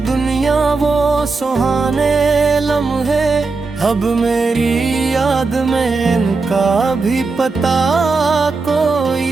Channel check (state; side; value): quieter; left; 4.1 dB